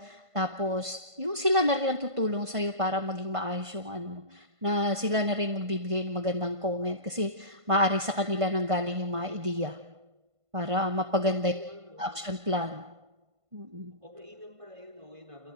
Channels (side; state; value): left; late; 1.5 ms